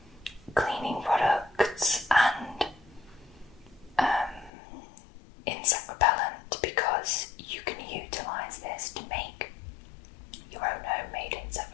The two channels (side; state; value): right; drops out; at 4.5 s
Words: cleaning products and insect repellent, because you can utilise this to make your own homemade insect